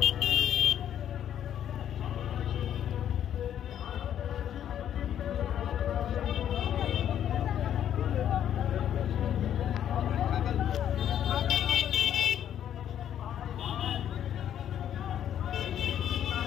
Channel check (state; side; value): quieter; right; 10.2 dB